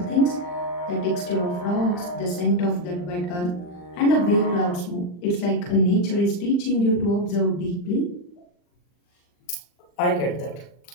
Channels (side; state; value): right; late; 40 ms